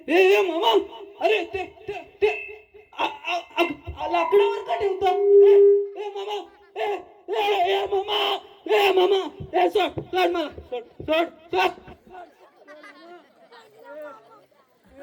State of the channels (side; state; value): both; identical; correlation 1.00